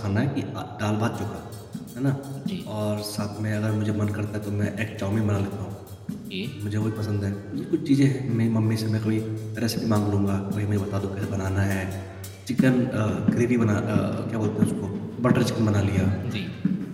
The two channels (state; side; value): identical; both; correlation 1.00